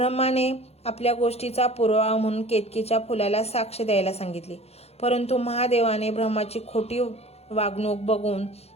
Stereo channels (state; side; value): late; right; 0.30 ms